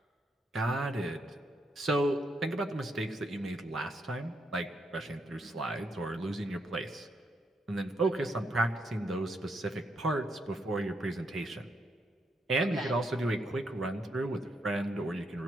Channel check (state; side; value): normal; both; correlation 0.78